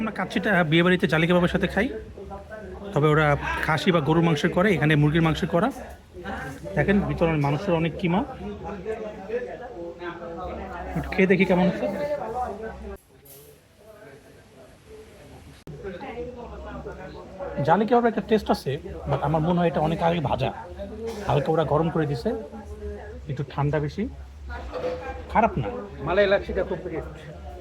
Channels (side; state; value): both; identical; correlation 1.00